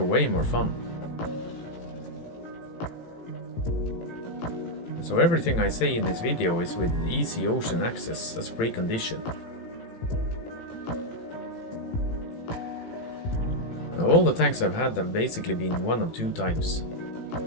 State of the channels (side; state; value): right; late; 18 ms